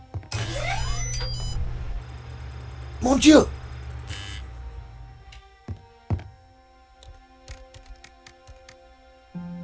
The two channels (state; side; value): identical; both; correlation 1.00